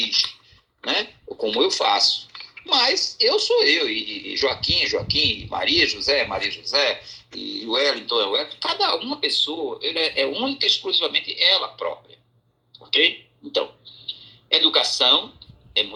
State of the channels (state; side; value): identical; both; correlation 1.00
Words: né? Ou como eu faço. Mas eu sou eu, e Joaquim, e Maria José, e o Wellington, cada uma pessoa ele é única e exclusivamente ela própria. Ok? Então, educação é